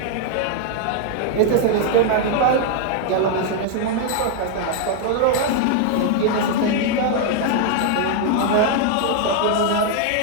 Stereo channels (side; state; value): both; different; correlation 0.00